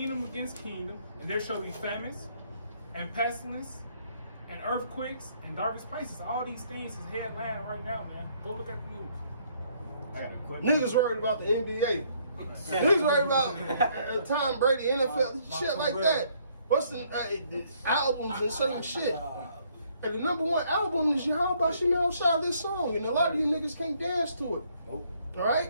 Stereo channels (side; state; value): both; inverted; correlation -0.66